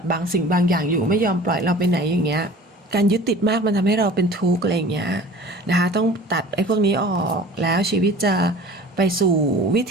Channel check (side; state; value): both; normal; correlation 0.43